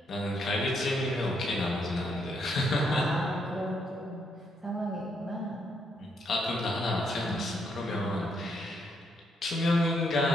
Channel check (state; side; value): normal; both; correlation 0.75